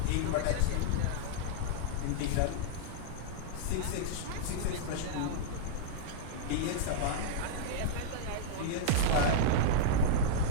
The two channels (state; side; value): different; both; correlation -0.02